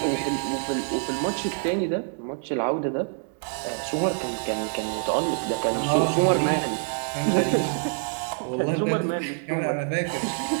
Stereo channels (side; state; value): left; silent; 60 dB below the other